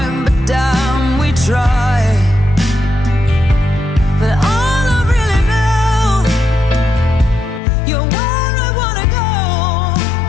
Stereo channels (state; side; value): drops out; right; at 7.6 s